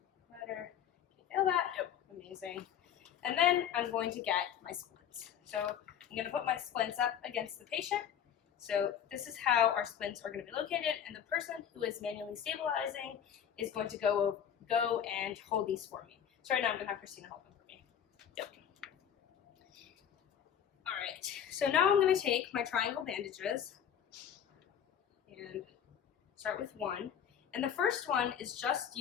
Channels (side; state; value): right; quieter; 9.0 dB